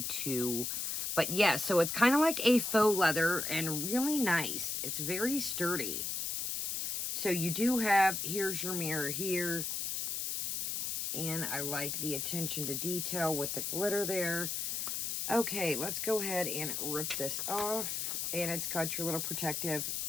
2. But yeah, so it's kind of like a faux leather and really nice. It's very sturdy. So you do have, here's your mirror here. And I like the attention to detail with the glitter there. Okay, let's go ahead and rip this off. And it's got your little protective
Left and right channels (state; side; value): noise; left; hiss, 1 dB below the sound